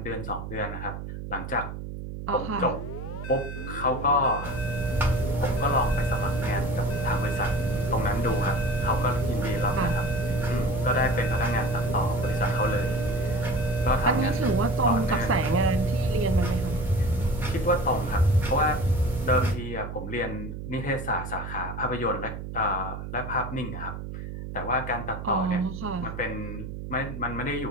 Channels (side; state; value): right; noise; hum, 8 dB below the sound